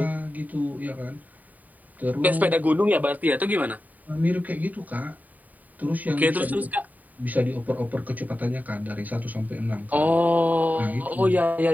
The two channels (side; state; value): left; late; 0.078 ms